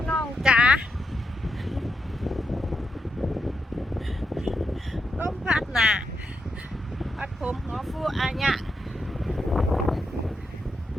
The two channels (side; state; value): both; normal; correlation 0.83